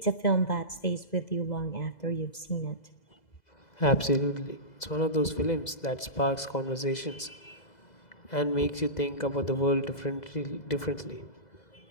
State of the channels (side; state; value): right; late; 2.0 ms